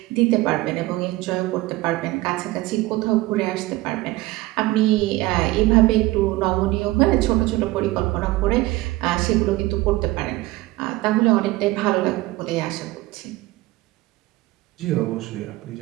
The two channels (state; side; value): quieter; left; 19.1 dB